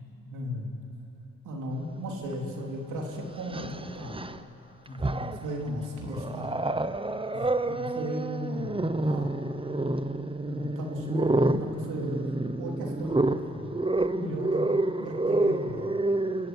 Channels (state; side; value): normal; both; correlation 0.73